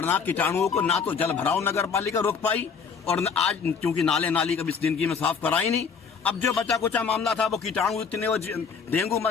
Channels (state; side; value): quieter; right; 6.0 dB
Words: कीटाणुओं को ना तो जल भराव नगर पालिका रोक पाई और आज क्योंकि नाले नाली कभी जिंदगी में साफ कराई नहीं। अब जो बचा कुचा मामला था वो कीटाणु इतने वो डेंगू